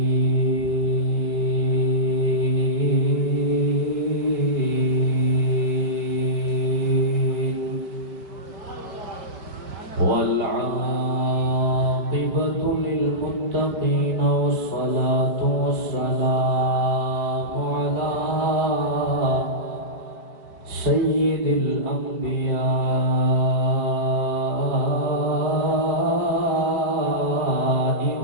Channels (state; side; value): late; left; 5.1 ms